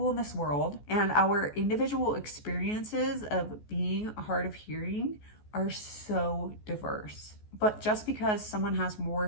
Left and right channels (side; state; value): right; late; 14 ms